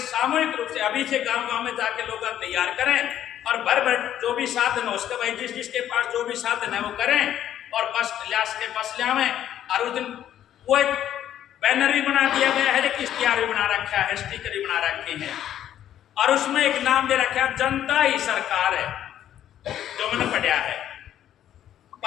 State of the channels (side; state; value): right; quieter; 11.1 dB